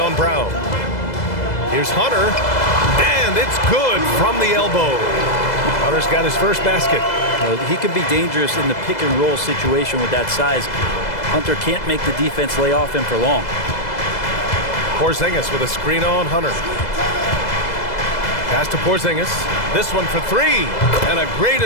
Brown. Here's Hunter. And it's good from the elbow. Hunter's got his first basket. He can be dangerous in the pick and roll situation with that size. Hunter can't make the defense lay off him for long. Porzingis with a screen on Hunter. Pass to Porzingis. This one for 3. And a great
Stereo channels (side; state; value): right; late; 2.0 ms